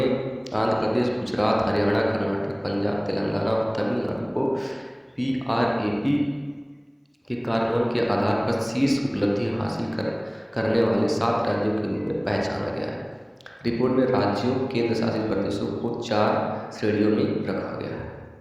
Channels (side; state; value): both; identical; correlation 1.00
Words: आंध्र प्रदेश, गुजरात, हरियाणा, कर्नाटक, पंजाब, तेलंगाना और तमिलनाडु को BRAP के कार्यान्वयन के आधार पर शीर्ष उपलब्धि हासिल करने वाले 7 राज्यों के रूप में पहचाना गया है। रिपोर्ट में राज्यों, केंद्र शासित प्रदेशों को 4 श्रेणियों में रखा गया है।